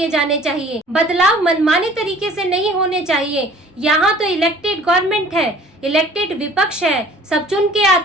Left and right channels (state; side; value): normal; both; correlation 0.51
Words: जाने चाहिए। बदलाव मनमाने तरीके से नहीं होने चाहिए। यहाँ तो इलेक्टेड गवर्नमेंट है, इलेक्टेड विपक्ष है, सब चुन के